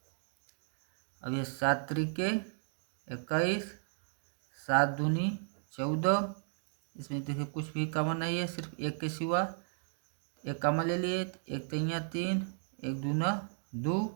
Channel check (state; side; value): silent; left; digital silence